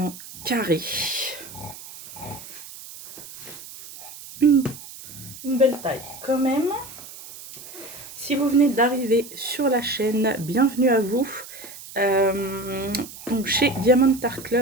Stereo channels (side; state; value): right; noise; hiss, 15 dB below the sound